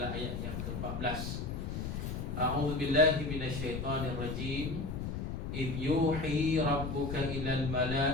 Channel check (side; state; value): left; noise; rumble, 4 dB below the sound